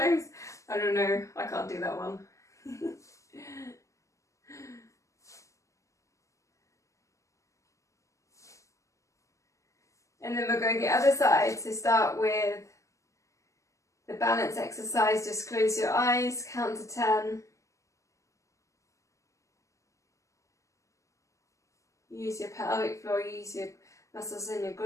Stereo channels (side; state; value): right; late; 0.15 ms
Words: I don't know, I can't do that one. And then we'll go the other side. So start with the balance exercise. Just close your eyes, count to 10. Use your pelvic floor, use your muscles in your